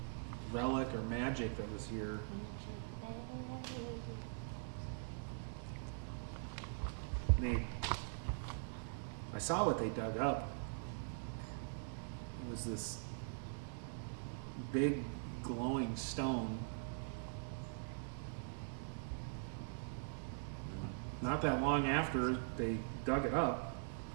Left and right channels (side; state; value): left; silent; digital silence